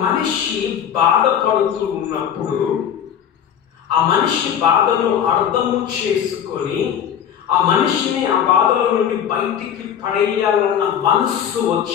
మనిషి బాధపడుతూ ఉన్నప్పుడు ఆ మనిషి బాధను అర్థము చేసుకొని ఆ మనిషిని ఆ బాధల నుండి బయటికి పడేయాలన్న మనస్సు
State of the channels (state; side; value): quieter; right; 9.0 dB